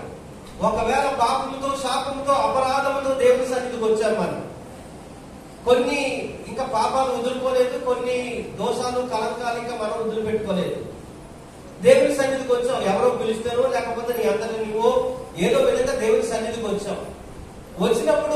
ఒకవేళ పాపముతో, శాపముతో, అపరాధముతో దేవుని సన్నిధికి వచ్చాం మనం, కొన్ని ఇంకా పాపాలు వదులుకోలేదు, కొన్ని దోషాలు, కలంకాలు ఇంకా మనం వదిలిపెట్టుకోలేదు. దేవుని సన్నిధికి వచ్చాం, ఎవరో పిలుస్తారో లేకపోతే నీ అంతటి నువ్వో ఏదో విధంగా దేవుని సన్నిధికి వచ్చాం. వచ్చినప్పుడు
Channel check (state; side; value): identical; both; correlation 1.00